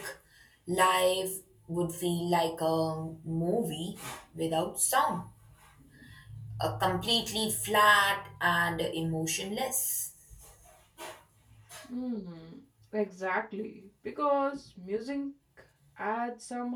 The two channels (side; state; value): both; identical; correlation 1.00